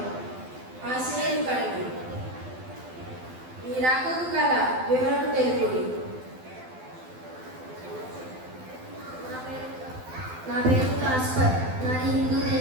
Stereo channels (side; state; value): left; late; 12 ms